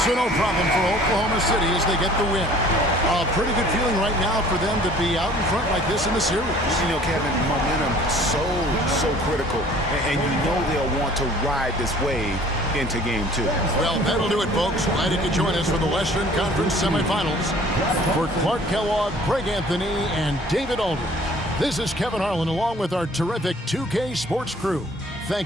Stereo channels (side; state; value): both; normal; correlation 0.52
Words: So no problem for Oklahoma City as they get the win. A pretty good feeling right now for them to be out in front like this in the series. You know, Kevin, momentum so critical. And you know they'll want to ride this wave into Game 2. Well, that'll do it, folks. Glad you could join us for the Western Conference semifinals. For Clark Kellogg, Greg Anthony, and David Aldridge, this is Kevin Harlan along with our terrific 2K Sports crew,